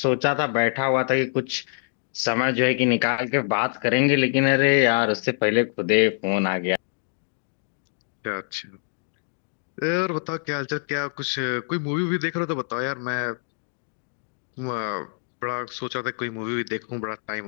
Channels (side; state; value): right; silent; digital silence